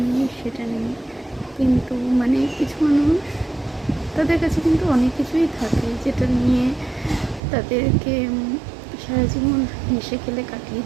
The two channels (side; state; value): left; drops out; at 7.4 s